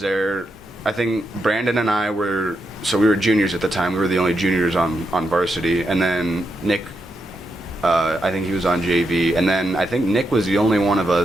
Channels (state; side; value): normal; both; correlation 0.84